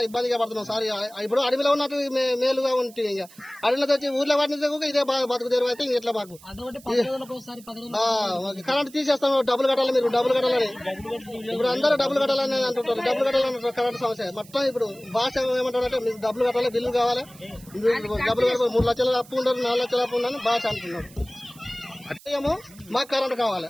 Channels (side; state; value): right; noise; hiss, 22 dB below the sound